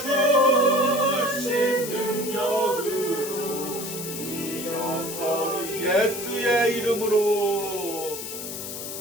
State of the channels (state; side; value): noise; left; hiss, 7 dB below the sound